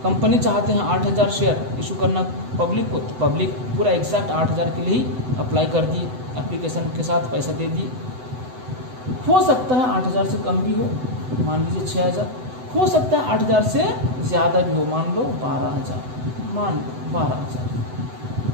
कंपनी चाहते हैं 8,000 शेयर इशू करना पब्लिक को, तो पब्लिक पूरा एग्जैक्ट 8,000 के लिए ही अप्लाई कर दिए, एप्लीकेशन के साथ पैसा दे दिए। हो सकता है 8,000 से कम भी हो, मान लीजिए 6,000, हो सकता है 8,000 से ज़्यादा भी हो, मान लो 12,000, मान लो 12,000।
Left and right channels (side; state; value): left; late; 7.9 ms